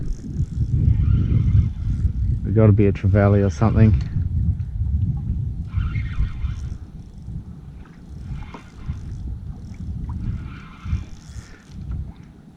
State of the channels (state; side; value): identical; both; correlation 1.00